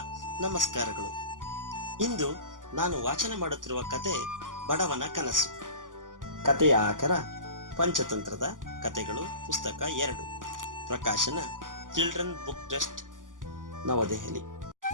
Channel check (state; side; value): late; left; 0.88 ms